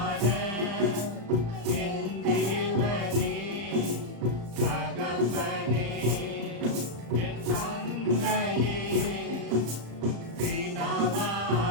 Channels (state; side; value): late; left; 35 ms